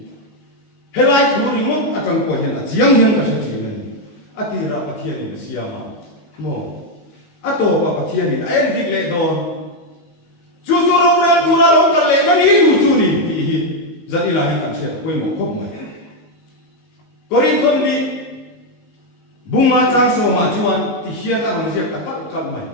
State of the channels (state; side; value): late; right; 19 ms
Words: hay là tu hi muốn à cần coi hiện à giang hiền cái gì này à thì là bác thiên là siam mà mò à tổ bác thiên là em đi lễ đón chú râu ra tu ra lâu cả lệ cái ní chú ní thì rất là hay cảm thấy quên một khúc này Corinthon đi bung mà trang số mà chuan thì hiền là làm gì cả cắt mày